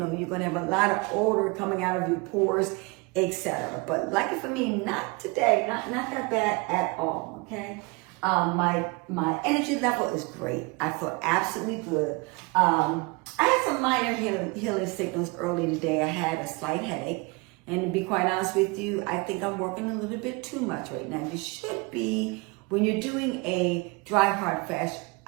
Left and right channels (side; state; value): left; quieter; 27.6 dB